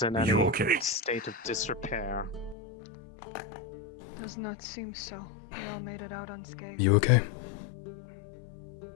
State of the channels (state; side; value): drops out; right; at 2.6 s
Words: in any state of disrepair? Does not seem so. We all made it out unscathed. You okay?